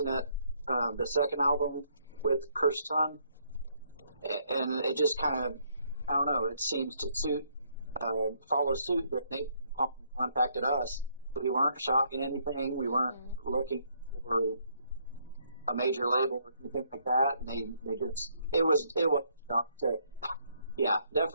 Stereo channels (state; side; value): inverted; both; correlation -0.70